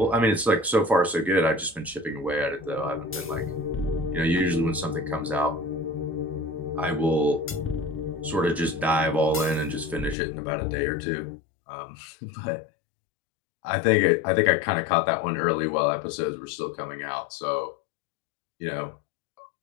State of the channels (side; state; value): right; drops out; at 10.2 s